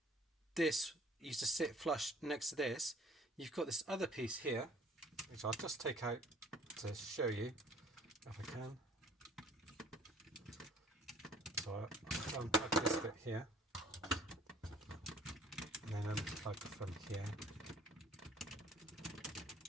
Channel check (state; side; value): normal; both; correlation 0.55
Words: this used to sit flush next to this, you've got this other piece here, which I'll just take out to show you if I can. So I'll unplug this bit here, and then unplug from here.